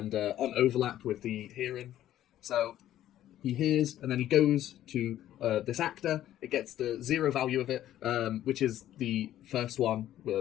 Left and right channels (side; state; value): right; quieter; 12.6 dB